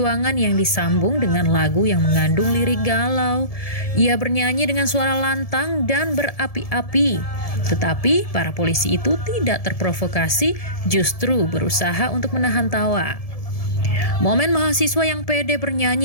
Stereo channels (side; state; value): right; late; 1.7 ms